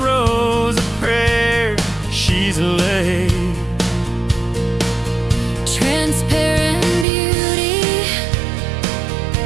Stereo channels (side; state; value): left; drops out; at 7.1 s